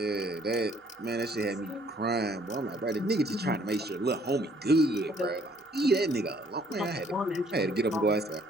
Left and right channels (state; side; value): normal; both; correlation 0.62